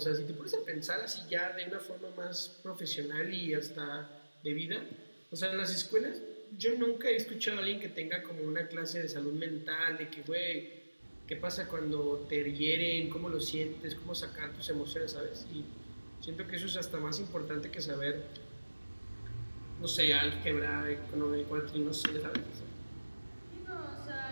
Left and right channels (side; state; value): both; inverted; correlation -1.00